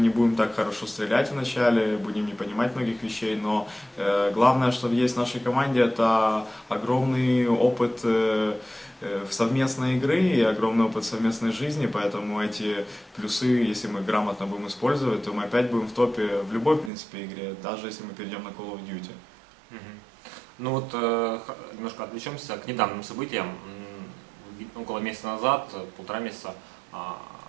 не будем так хорошо стрелять вначале, будем не понимать многих вещей, но главное, что есть в нашей команде, это огромный опыт совместной игры и огромный опыт совместной жизни, поэтому эти плюсы, если мы грамотно будем использовать, то мы опять будем в топе в любой, в принципе, игре, даже если мы перейдем на Call of Duty. Ну вот немножко отвлечемся к недавним событиям. Около месяца назад, 1,5 месяца,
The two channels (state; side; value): drops out; left; at 16.9 s